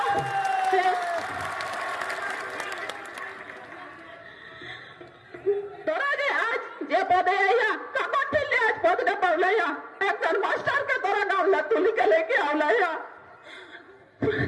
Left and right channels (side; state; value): both; identical; correlation 1.00